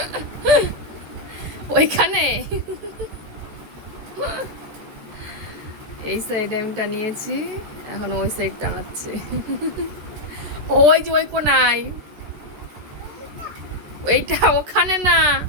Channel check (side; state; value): left; late; 13 ms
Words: ওইখানে এই সাইডে আমি টানিয়েছি, এখন ওই সাইড টানাচ্ছে ওই যে ওই কোনায়, ওইটা ওখানে না,